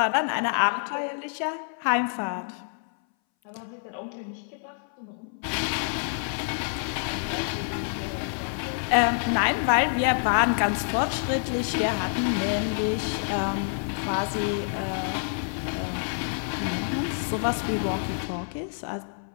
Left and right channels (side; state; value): right; silent; 60 dB below the other